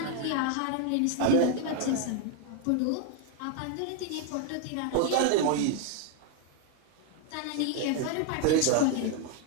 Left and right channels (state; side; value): different; both; correlation 0.01